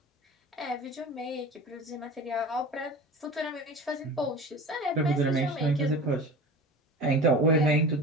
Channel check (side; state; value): both; normal; correlation 0.35